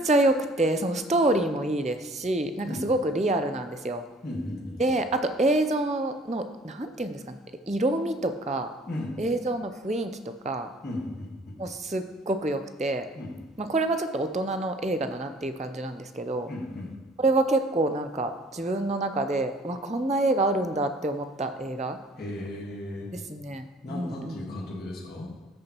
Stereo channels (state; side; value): normal; both; correlation 0.54